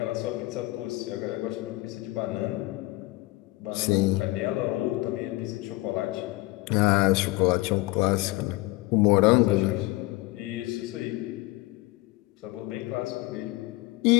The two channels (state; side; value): quieter; right; 20.3 dB